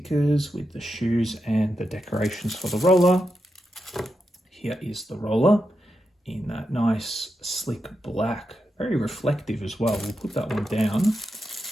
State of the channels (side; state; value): both; normal; correlation 0.87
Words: with the shoes and the decorations for the roller. Here is the roller in that nice slick black, very reflective as well. We'll put that one down,